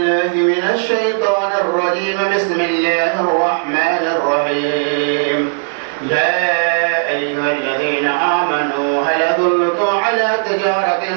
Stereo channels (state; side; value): silent; left; digital silence